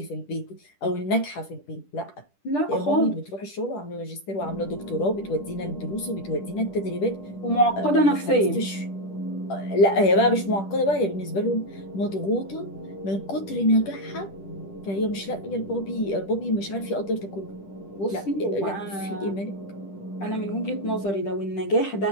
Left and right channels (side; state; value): right; late; 10 ms